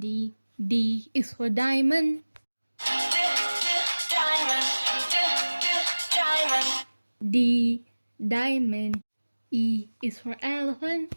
D is for diamond. D diamond. E is for elephant.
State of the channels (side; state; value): both; inverted; correlation -1.00